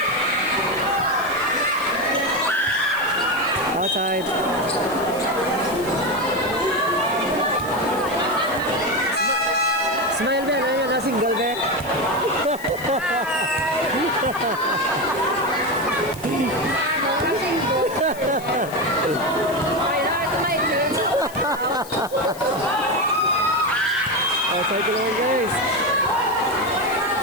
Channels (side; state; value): left; noise; hiss, 17 dB below the sound